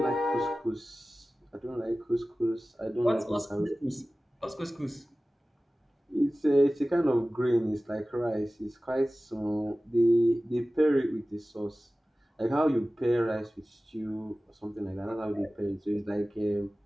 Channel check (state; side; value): normal; both; correlation 0.97